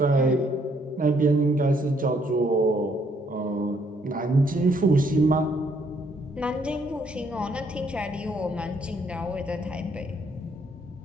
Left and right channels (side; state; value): both; normal; correlation 0.69